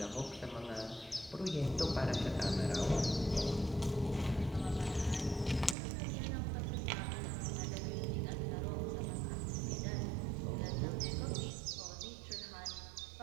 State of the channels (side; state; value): left; drops out; at 5.8 s